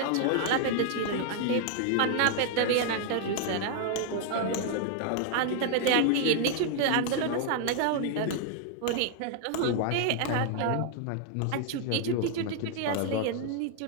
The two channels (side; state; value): both; different; correlation 0.00